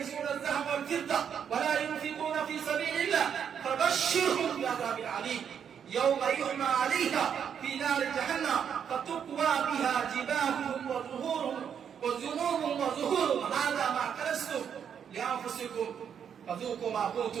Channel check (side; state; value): left; quieter; 8.0 dB